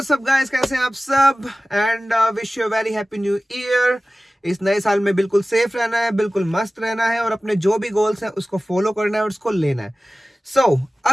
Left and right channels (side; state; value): both; normal; correlation 0.96